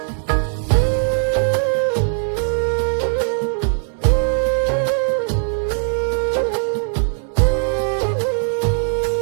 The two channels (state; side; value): silent; left; digital silence